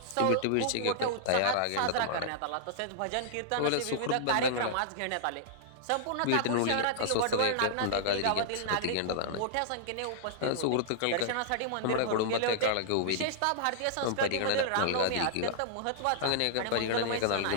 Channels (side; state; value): both; different; correlation -0.01